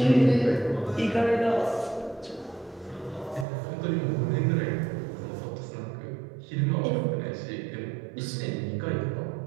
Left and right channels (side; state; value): left; drops out; at 3.5 s